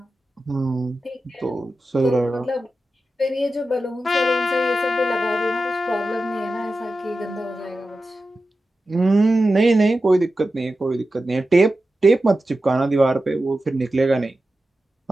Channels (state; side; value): normal; both; correlation 0.92